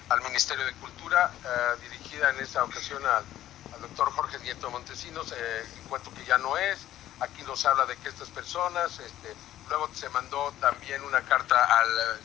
al Ministerio de Cultura, dirigida en esta ocasión al doctor Jorge Nieto Montesinos, encuentro que ya no es. Aquí nos habla de que estas personas, luego se mandó también una carta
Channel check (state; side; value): quieter; right; 13.1 dB